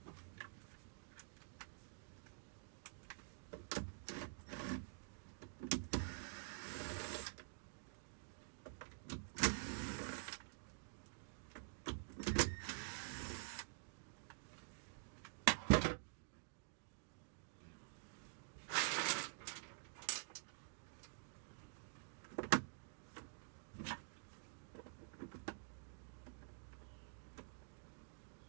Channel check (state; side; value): silent; left; digital silence